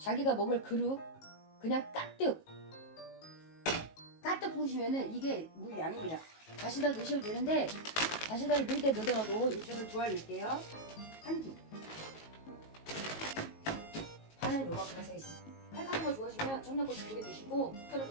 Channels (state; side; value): late; right; 19 ms